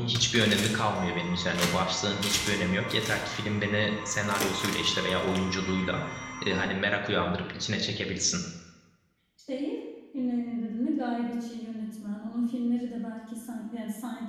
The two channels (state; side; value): identical; both; correlation 1.00